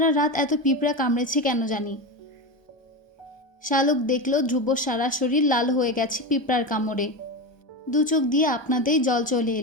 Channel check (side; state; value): right; late; 1.3 ms